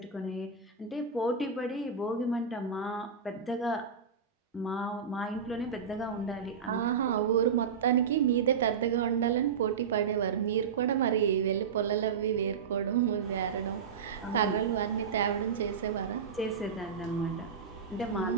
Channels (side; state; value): left; quieter; 6.3 dB